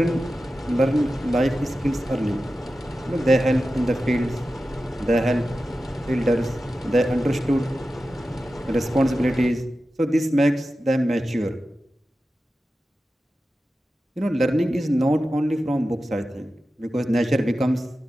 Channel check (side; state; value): both; normal; correlation 0.93